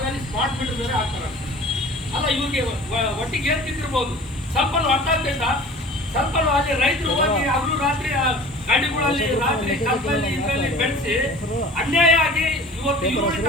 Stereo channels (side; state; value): both; normal; correlation 0.43